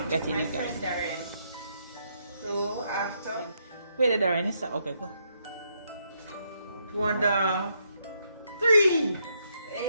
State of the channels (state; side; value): inverted; both; correlation -0.76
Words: Getting my it, guys. friend Darren. So after Wait, Darren, it's okay, go. 1, 3.